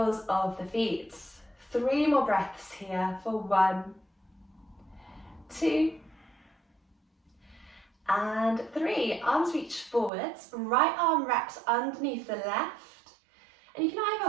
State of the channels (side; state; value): left; drops out; at 10.1 s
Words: of the feet. 3 more breaths here for 1, 2, and 3. Arms reach forwards, right arm wraps underneath the left, and you can either